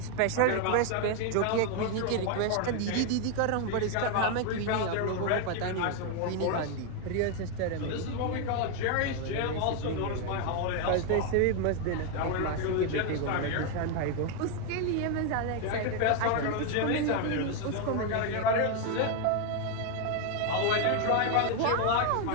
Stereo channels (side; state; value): both; different; correlation 0.01